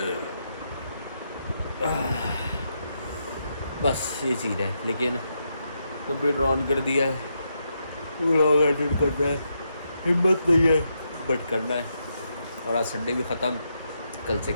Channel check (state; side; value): inverted; both; correlation -0.81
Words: बस ये चीज़ है, लेकिन कंप्यूटर ऑन कर दिया है, व्लॉग एडिट करना है, हिम्मत नहीं है, बट करना है। और आज संडे भी ख़त्म, कल से